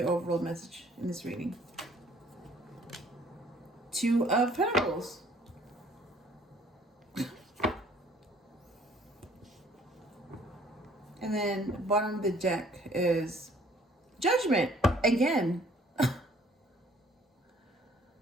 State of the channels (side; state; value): both; normal; correlation 0.58